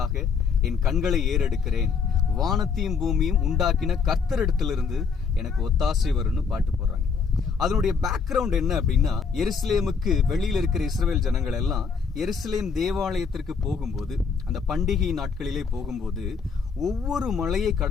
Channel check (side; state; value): right; quieter; 5.6 dB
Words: என் கண்களை ஏறெடுக்கிறேன், வானத்தையும் பூமியும் உண்டாக்கின கர்த்தரிடத்திலிருந்து எனக்கு ஒத்தாசை வரும்னு பாட்டு போடுறாங்க. அதனுடைய பேக்ரவுண்ட் என்ன அப்படின்னா, எருசலேமுக்கு வெளியில் இருக்கிற இஸ்ரவேல் ஜனங்கள் எல்லாம் எருசலேம் தேவாலயத்திற்கு போகும்போது, அந்த பண்டிகை நாட்களிலே போகும்போது ஒவ்வொரு மலையை